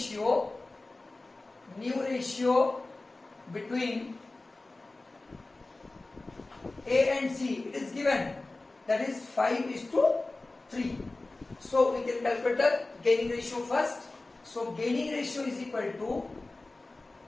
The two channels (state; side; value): quieter; right; 3.1 dB